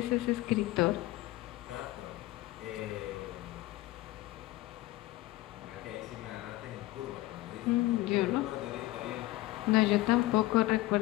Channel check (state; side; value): quieter; right; 17.9 dB